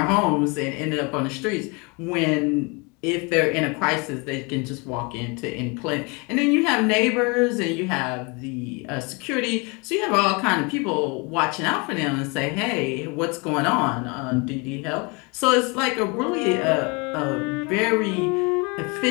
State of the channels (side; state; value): right; quieter; 29.8 dB